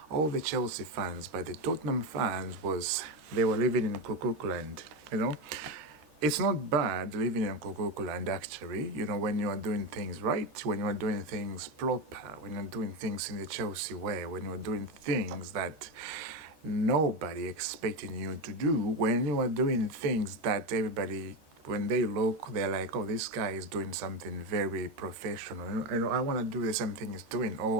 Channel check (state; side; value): late; left; 13 ms